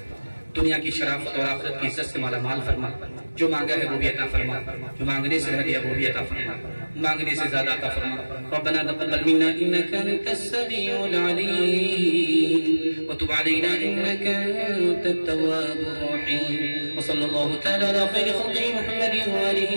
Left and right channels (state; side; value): inverted; both; correlation -1.00